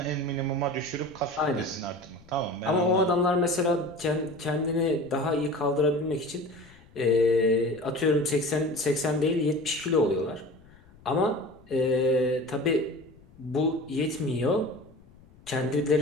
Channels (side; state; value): left; noise; rumble, 25 dB below the sound